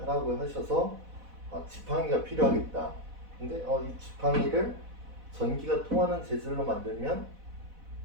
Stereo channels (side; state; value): left; late; 4.1 ms